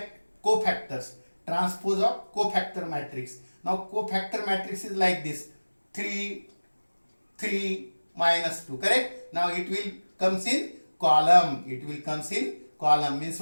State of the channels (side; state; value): both; inverted; correlation -1.00